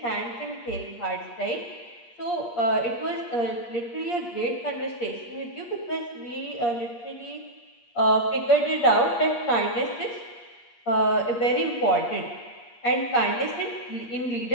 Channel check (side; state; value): right; late; 8.5 ms